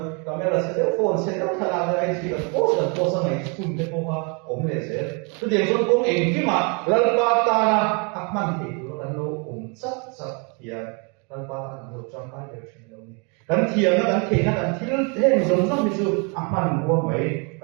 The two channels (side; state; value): left; quieter; 34.2 dB